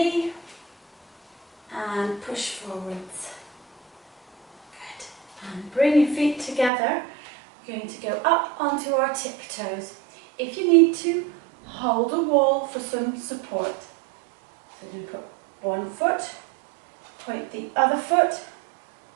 and push forwards. Good. And bring your feet together. We're going to go up onto our tiptoes. If you need to, hold a wall for some support. So you're going to put one foot, point the other foot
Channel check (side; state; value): left; drops out; at 6.7 s